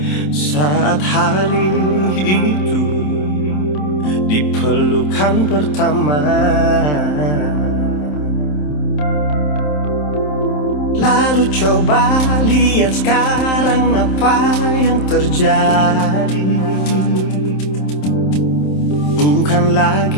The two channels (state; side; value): late; right; 27 ms